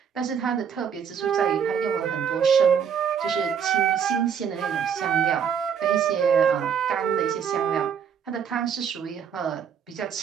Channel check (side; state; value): left; quieter; 7.6 dB